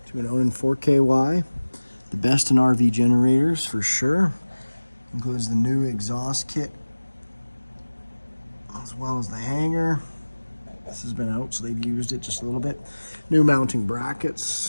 to an Onan 4KY. The best in RV generators for sure. Includes the new exhaust kit as well as the hanger. This has been out, so they've used it just a little bit. New mounting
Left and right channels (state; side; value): inverted; both; correlation -1.00